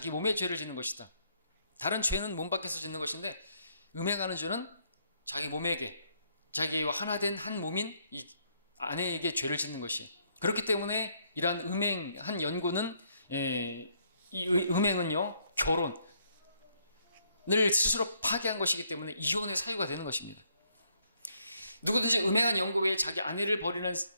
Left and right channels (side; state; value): both; inverted; correlation -0.71